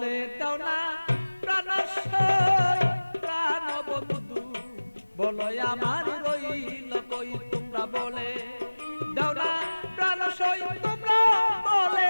দাও না প্রাণ প্রাণ বন্ধু, বলো আমার রইল কই। তোমরা বলে দাও না প্রাণ তোমরা বলে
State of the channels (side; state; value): both; inverted; correlation -1.00